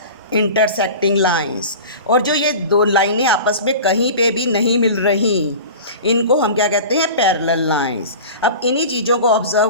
intersecting lines. और जो ये दो लाइनें आपस में कहीं पे भी नहीं मिल रही, इनको हम क्या कहते हैं? Parallel lines. अब इन्हीं चीज़ों को ऑब्जर्व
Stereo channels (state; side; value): inverted; both; correlation -0.35